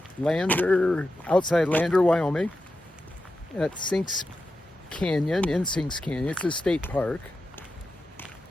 outside Lander, Wyoming, at Sinks Canyon, in Sinks Canyon. It's a state park.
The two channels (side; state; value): both; normal; correlation 0.90